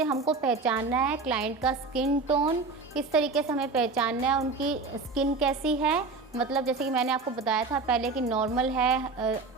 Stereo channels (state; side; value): quieter; left; 4.0 dB